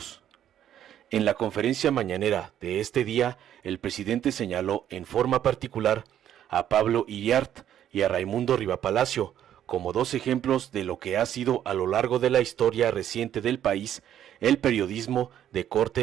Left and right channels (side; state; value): left; quieter; 10.7 dB